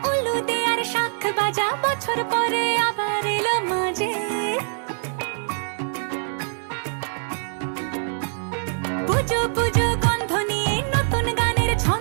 উলু দে আর শাখ বাজা, বছর পরে আবার এলো মাঝে। পুজো পুজো গন্ধ নিয়ে নতুন গানের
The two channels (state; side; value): silent; left; digital silence